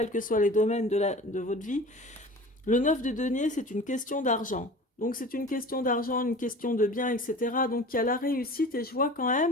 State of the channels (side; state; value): both; normal; correlation 0.39